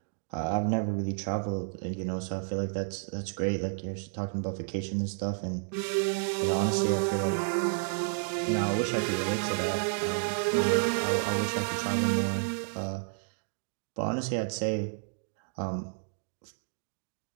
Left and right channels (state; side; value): silent; left; digital silence